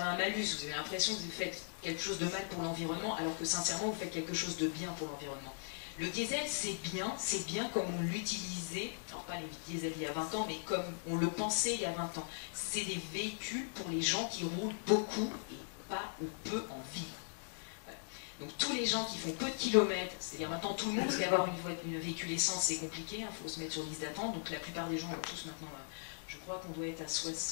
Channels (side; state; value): right; silent; digital silence